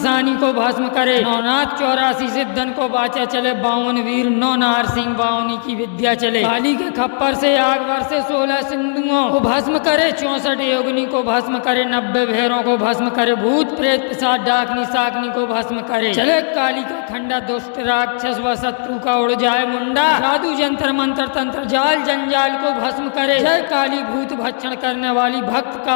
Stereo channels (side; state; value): right; silent; digital silence